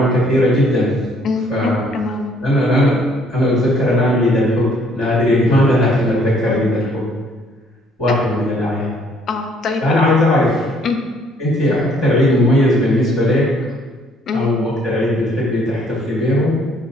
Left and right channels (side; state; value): both; normal; correlation 0.63